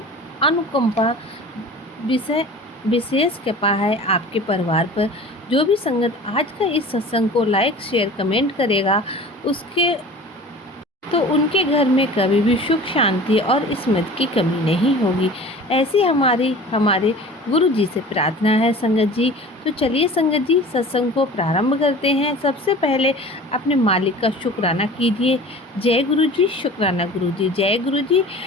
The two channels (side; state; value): both; normal; correlation 0.41